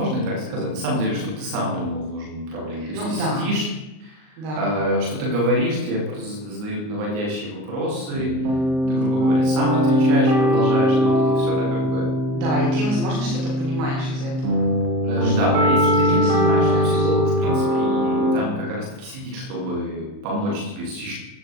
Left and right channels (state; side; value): late; left; 38 ms